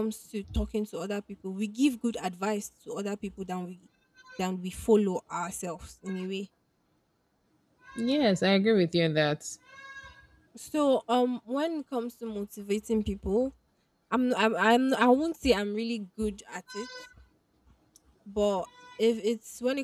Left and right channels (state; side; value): identical; both; correlation 1.00